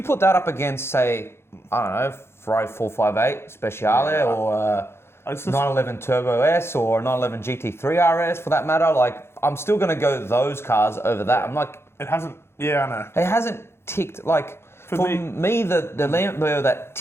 put that up against, say, I don't know, Ferrari 458 Speciale or 911 Turbo S or 911 GT3 RS for that matter, like, I'm still going to go those cars over that. I'm like... It hasn't... Yeah, I know. It hasn't ticked... Like, for me the Lambo that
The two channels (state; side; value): late; right; 0.12 ms